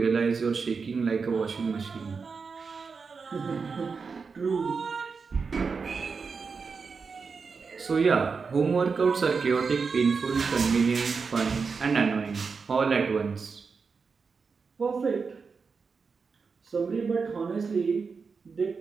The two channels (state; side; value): quieter; left; 5.1 dB